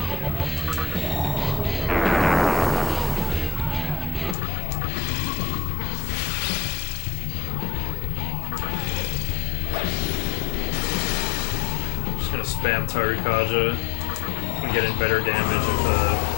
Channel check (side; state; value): right; drops out; at 4.4 s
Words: Just gonna spam Tarukaja and get in better damage if